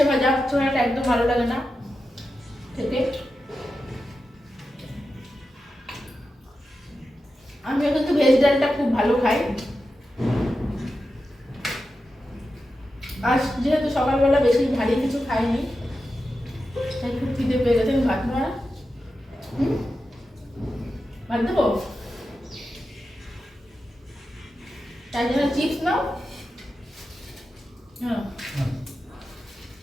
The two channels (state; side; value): normal; both; correlation 0.90